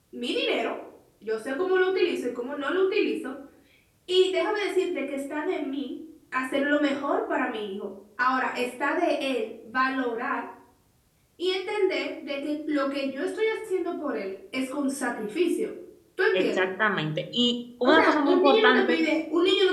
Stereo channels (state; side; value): identical; both; correlation 1.00